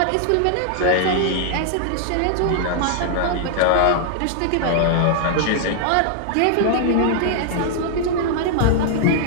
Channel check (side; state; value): both; different; correlation -0.01